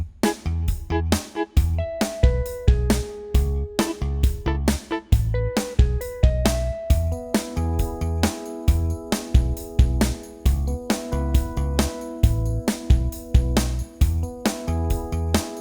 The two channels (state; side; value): identical; both; correlation 1.00